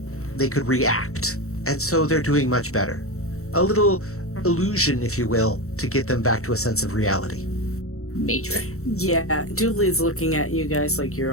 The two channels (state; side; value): late; right; 0.64 ms